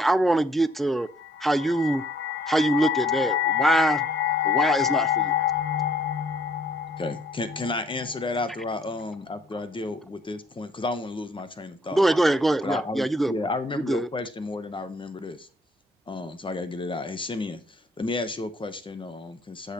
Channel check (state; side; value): normal; both; correlation 0.63